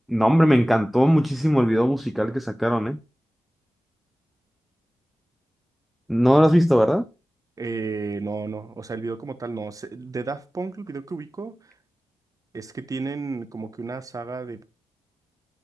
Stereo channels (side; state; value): both; normal; correlation 0.97